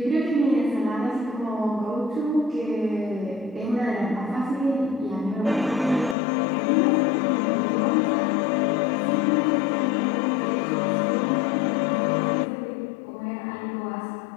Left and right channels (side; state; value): right; drops out; at 6.2 s